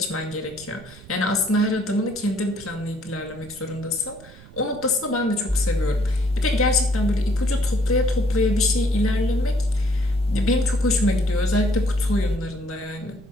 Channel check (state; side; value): noise; right; rumble, 20 dB below the sound